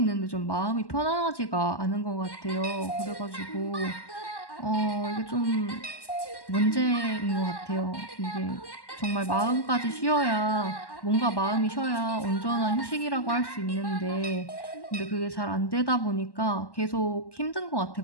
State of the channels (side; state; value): right; late; 1.1 ms